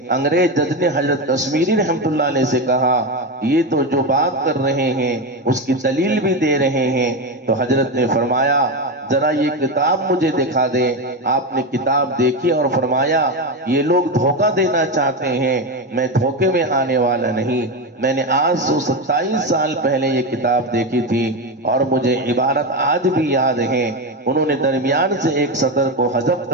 انگریز جج نے حضرت کشمیری رحمت اللہ علیہ سے کہا یہ تو جو بات کر رہے ہیں اس کی دلیل بھی دے رہے ہیں، تو حضرت نے فرمایا ذرا یہ کتاب مجھے دکھا دے۔ آپ نے کتاب دیکھی اور فرمایا یہ لوگ دھوکہ دینا چاہتے ہیں، میں دھوکے میں آنے والا نہیں۔ میں نے آج 127 سال پہلے یہ کتاب دیکھی تھی اور مجھے عبارت آج بھی یاد ہے۔ انہوں نے درمیان سے ایک سطر کو حذف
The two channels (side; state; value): both; normal; correlation 0.15